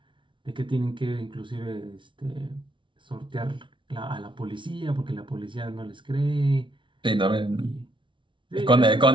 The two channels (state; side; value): late; left; 0.24 ms